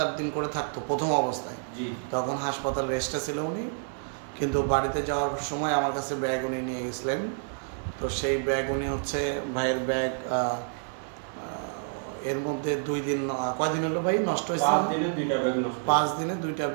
দিন করে থাকতো প্রথম অবস্থায়। জি। তখন হাসপাতাল রেস্টে ছিল উনি, কিন্তু বাড়িতে যাওয়ার সময় আমার কাছে ব্যাগ উনি নিয়ে গেছিলেন। তো সেই ব্যাগ উনি হচ্ছে ভাইয়ের ব্যাগ এর মধ্যে 2 দিন, কয়দিন হলো ভাই নষ্ট হয়েছে? 5 দিনে 2টা ব্যাগ নষ্ট। 5 দিনে 2টা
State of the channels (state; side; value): silent; left; digital silence